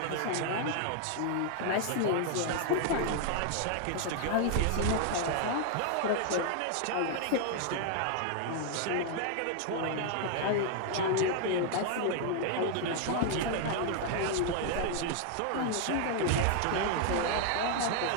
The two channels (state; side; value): different; both; correlation 0.00